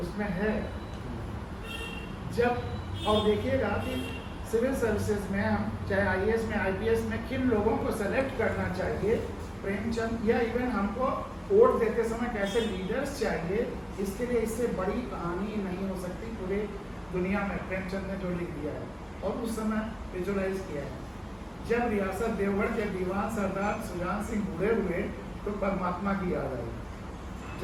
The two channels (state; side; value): identical; both; correlation 1.00